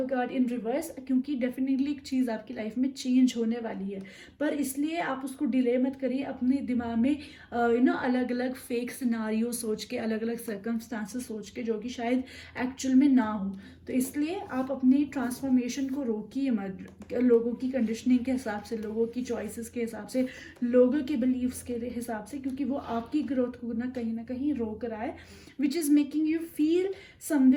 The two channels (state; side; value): identical; both; correlation 1.00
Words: कार्ड इन रिवर्स, क्योंकि डेफिनेटली एक चीज़ आपकी लाइफ में चेंज होने वाली है, पर इसलिए आप उसको डिले मत करिए। अपने दिमाग में अलग अलग फेक सिनारियो सोच के, अलग अलग सर्कमस्टांसेस सोच के, जो कि शायद एक्चुअल में ना हो। तो इसलिए आप अपनी ट्रांसफॉर्मेशन को रोकिए मत, लोगों की कंडीशनिंग के हिसाब से, लोगों की चॉइसेस के हिसाब से, लोगों के बिलीव्स के हिसाब से, क्योंकि वो आपकी ग्रोथ को ना कहीं रोक रहा है, which is making you feel